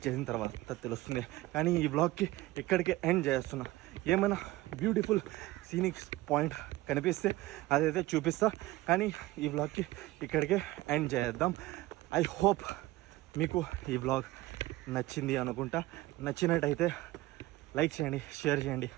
చేసిన తర్వాత తెలుస్తుంది. కానీ ఈ బ్లాగ్కి ఇక్కడికే ఎండ్ చేస్తున్నా. ఏమైనా బ్యూటిఫుల్ సీనిక్ పాయింట్ కనిపిస్తే అదైతే చూపిస్తా, కానీ ఈ బ్లాగ్కి ఇక్కడికే ఎండ్ చేద్దాం. ఐ హోప్ మీకు ఈ బ్లాగ్ నచ్చింది అనుకుంటా. నచ్చినట్టయితే లైక్ చేయండి, షేర్ చేయండి,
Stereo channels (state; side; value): quieter; left; 18.2 dB